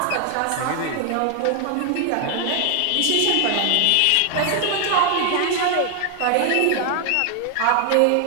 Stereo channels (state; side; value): different; both; correlation 0.00